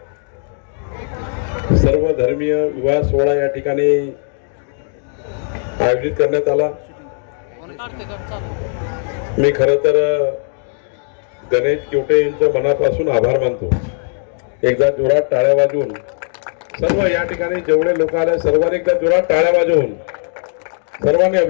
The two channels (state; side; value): silent; right; 62 dB below the other